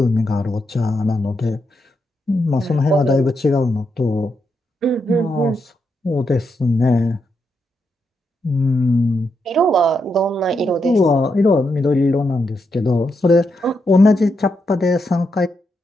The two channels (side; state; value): both; normal; correlation 0.83